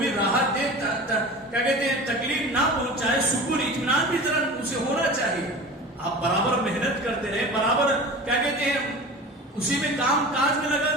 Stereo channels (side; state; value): both; normal; correlation 0.36